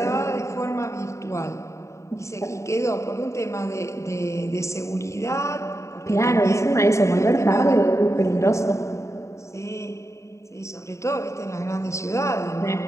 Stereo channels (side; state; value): right; late; 0.14 ms